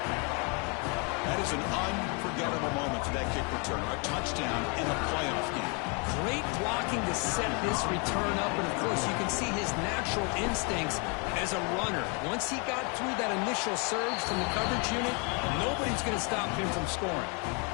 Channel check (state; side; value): quieter; right; 34.1 dB